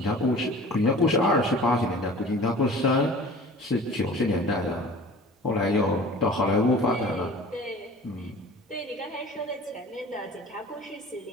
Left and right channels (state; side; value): normal; both; correlation 0.43